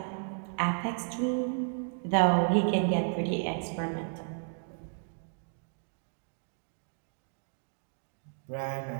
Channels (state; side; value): silent; left; 56 dB below the other